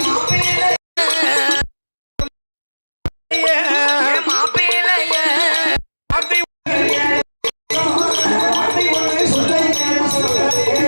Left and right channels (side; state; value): both; inverted; correlation -1.00